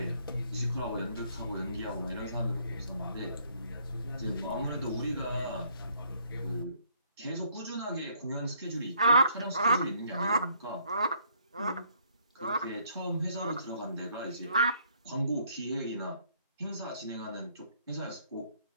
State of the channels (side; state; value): both; inverted; correlation -0.67